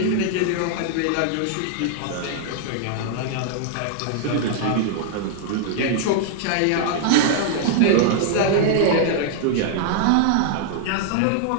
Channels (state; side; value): different; both; correlation -0.01